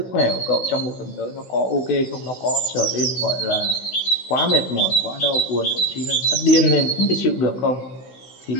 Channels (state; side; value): late; right; 15 ms